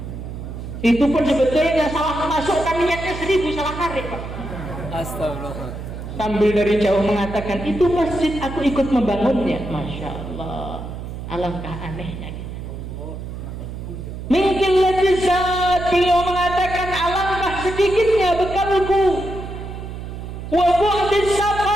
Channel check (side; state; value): right; noise; hum, 9 dB below the sound